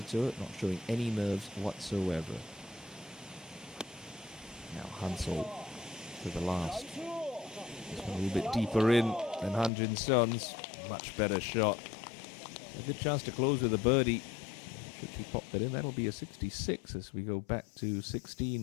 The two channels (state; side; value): drops out; right; at 9.7 s